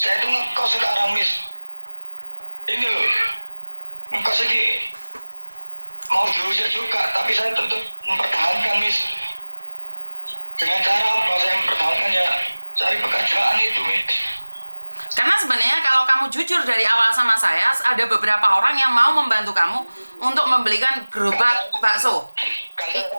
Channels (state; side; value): inverted; both; correlation -1.00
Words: itu ngekos sekarang Miss. Ini loh, ngekos ini mau diusir juga, tapi saya tetap mempertahankan Miss. Dengan cara apa saya mempertahankan ya? Cari pekerjaan itu Miss. Karena sebenarnya kalau kamu jujur dari awal sama saya, ada beberapa orang yang mau membantu kamu untuk membelikan gerobak bakso. Karena